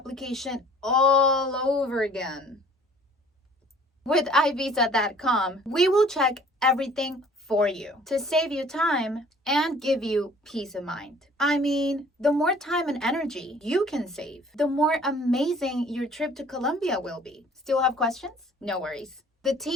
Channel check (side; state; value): both; normal; correlation 0.53